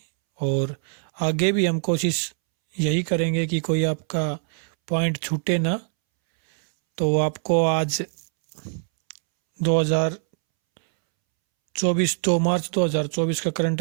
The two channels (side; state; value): left; silent; 63 dB below the other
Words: और आगे भी हम कोशिश यही करेंगे कि कोई आपका पॉइंट छूटे ना। तो आपको आज 2 मार्च 2024 का